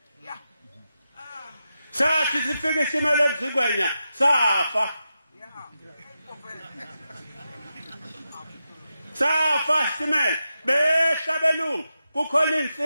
sathi sifike isimela emsingwenya safa isimela behlabelungu kukhona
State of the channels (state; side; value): inverted; both; correlation -0.89